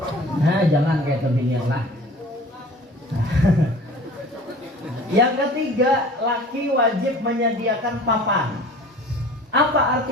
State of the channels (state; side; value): normal; both; correlation 0.44